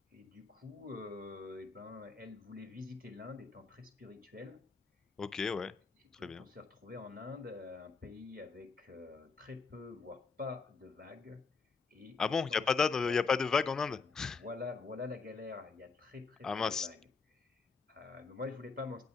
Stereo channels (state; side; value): quieter; right; 4.9 dB